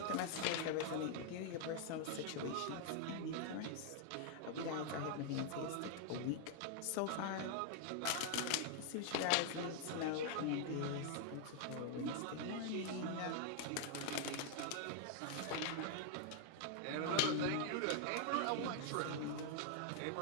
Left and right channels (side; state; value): both; different; correlation 0.00